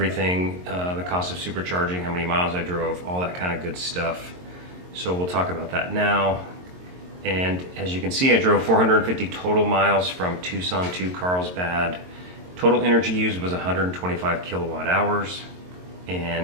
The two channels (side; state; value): left; late; 22 ms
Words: the cost of supercharging, how many miles I drove, all that kind of good stuff. So we'll talk about that now. And as you can see, I drove 450 total miles from Tucson to Carlsbad. Total energy used was 125 kilowatt hours